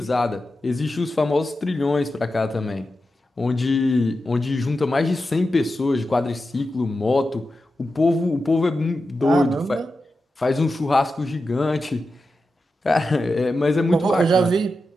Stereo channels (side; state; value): both; normal; correlation 0.91